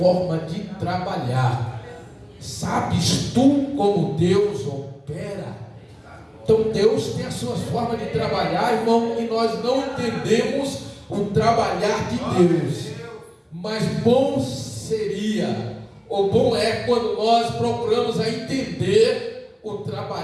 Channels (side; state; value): both; identical; correlation 1.00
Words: de trabalhar. Sabes tu como Deus opera? Então Deus tem as suas formas de trabalhar, irmão, e nós não entendemos o trabalhar de Deus. Mas bom seria, ou bom é quando nós procuramos a entender o